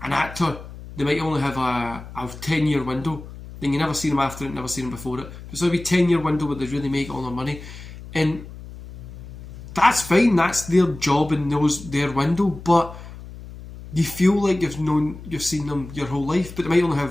an actor, they might only have a 10-year window. Then you never see them after it, never see them before it. So it'll be a 10-year window where they really make all their money. And that's fine, that's their job and their window, but you feel like you've seen them your whole life, but they might only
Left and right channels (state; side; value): noise; left; hum, 14 dB below the sound